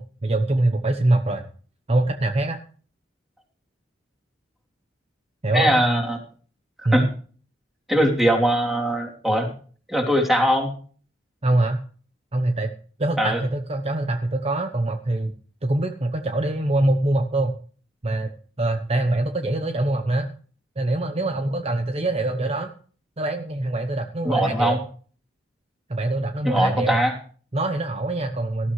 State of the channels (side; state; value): both; normal; correlation 0.78